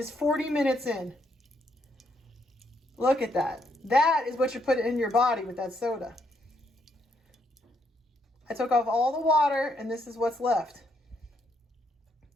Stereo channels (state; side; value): normal; both; correlation 0.74